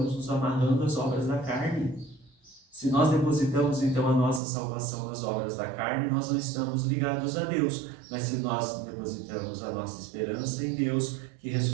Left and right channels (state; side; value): drops out; left; at 4.4 s